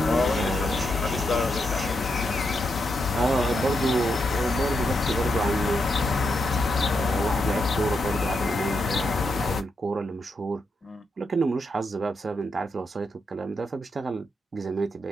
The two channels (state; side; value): normal; both; correlation 0.82